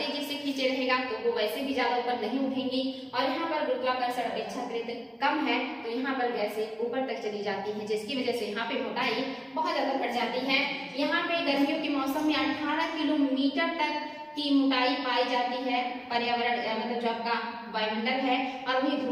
से खींचे रहेगा तो वो वैसे भी ज्यादा ऊपर नहीं उठेंगी। और यहाँ पर गुरुत्वाकर्षण अपेक्षाकृत कम है तो यहाँ पर गैसें ऊपर तक चली जाती है, जिसकी वजह से यहाँ पे मोटाई बहुत ज्यादा बढ़ जाती है। यहाँ पे गर्मियों के मौसम में 18 किलोमीटर तक की मोटाई पाई जाती है पर्यावरण मतलब जो आपका वायुमंडल है, और वही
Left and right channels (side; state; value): both; identical; correlation 1.00